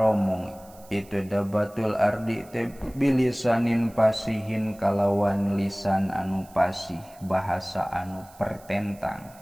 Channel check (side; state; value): right; noise; hiss, 25 dB below the sound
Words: itu dabatul ardi teh bilisanin pasihin kalawan lisan anu pasih bahasa anu